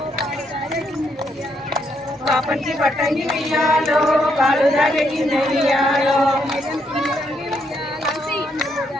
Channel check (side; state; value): both; normal; correlation 0.75